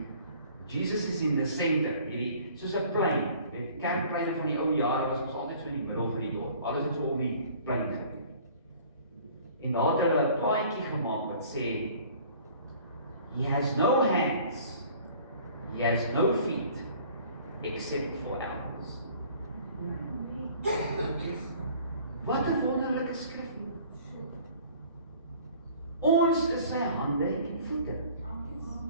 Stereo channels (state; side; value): inverted; both; correlation -0.51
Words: Jesus is in the center, hierdie, soos 'n plein, weet, kerkpleine van die ou jare was ons altyd so in die middel van die dorp, alles het so om die plein gebeur. En daar het hulle 'n plaatjie gemaak wat sê, He has no hands, He has no feet, except for ours. Wat 'n wonderlike skrif. Ons is sy hande en voete.